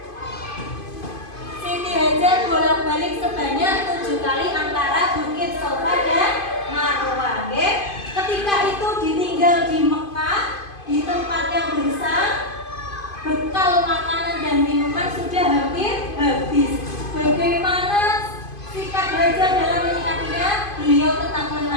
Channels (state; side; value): late; right; 2.5 ms